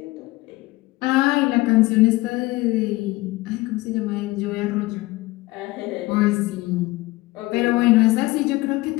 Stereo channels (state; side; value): quieter; right; 20.2 dB